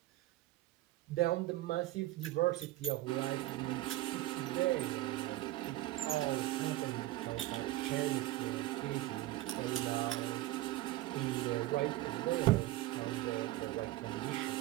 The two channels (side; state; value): left; quieter; 16.8 dB